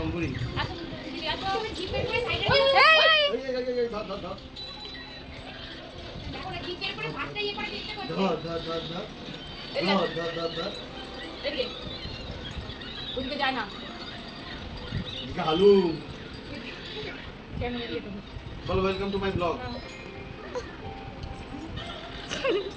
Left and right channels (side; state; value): both; identical; correlation 1.00